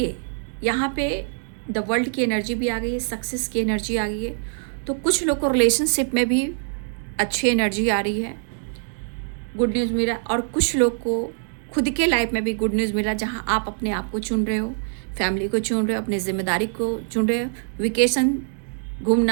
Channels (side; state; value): left; silent; digital silence